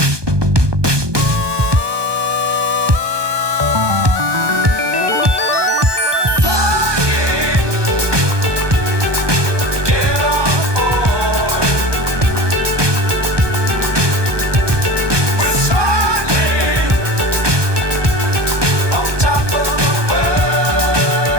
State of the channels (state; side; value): late; left; 1.2 ms